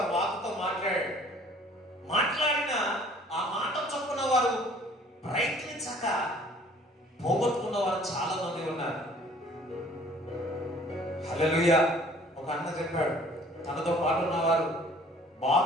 వాకుతో మాట్లాడాడు. మాట్లాడిన ఆ మాట చొప్పున వారు ప్రయత్నించక పోగొట్టుకున్న వారు చాలా మంది ఉన్నారు. హల్లెలూయా. ఒక అన్న చెప్పాడు, తనతో పాటు ఉన్నవారు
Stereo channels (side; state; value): both; normal; correlation 0.54